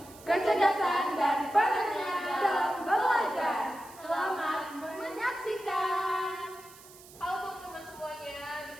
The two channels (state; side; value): noise; right; hiss, 21 dB below the sound